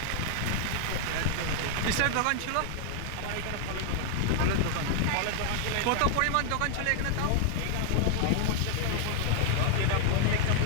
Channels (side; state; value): both; different; correlation 0.00